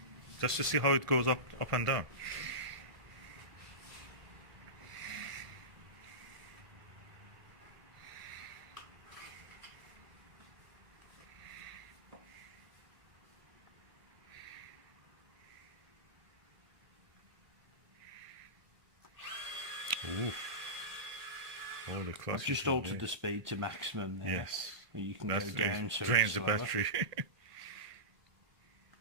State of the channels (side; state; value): left; late; 1.5 ms